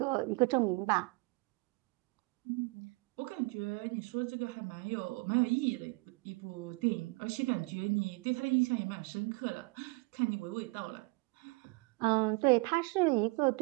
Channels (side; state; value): left; quieter; 26.9 dB